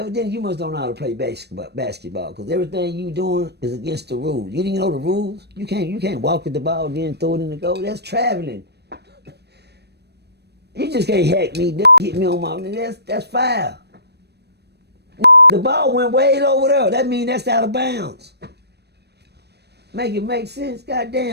you must don't know how to play basketball, because everything you doing is against the rules. You didn't know the rules. You can't walk with the ball, then throw it in the goal. That's traveling. You just can't hack me, hit me on my... That's foul. The ball went way over there. That means that's out of bounds. Make it make sense.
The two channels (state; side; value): late; left; 0.48 ms